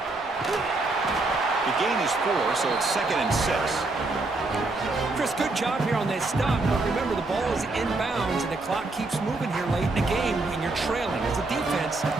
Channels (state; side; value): quieter; left; 3.2 dB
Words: The gain is 4, so it's 2nd and 6. Chris, good job here on that stop, but remember the ball is inbounds and the clock keeps moving here late in the game when you're trailing. As a defense,